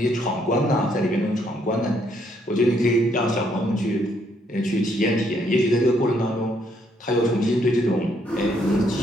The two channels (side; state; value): both; normal; correlation 0.71